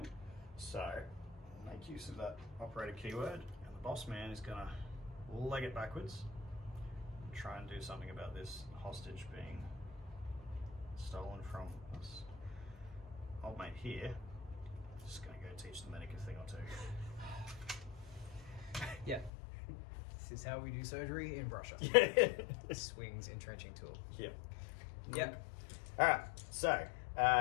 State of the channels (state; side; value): drops out; right; at 19.3 s